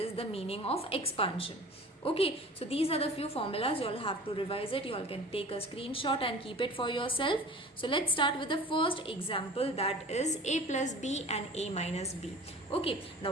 the meaning of expansion. Okay, so these are the few formulas. You all have to revise it. You all can take a screenshot and keep it for yourself. So let's start with the first example, that is a plus b and a minus b. Okay, now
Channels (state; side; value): normal; both; correlation 0.42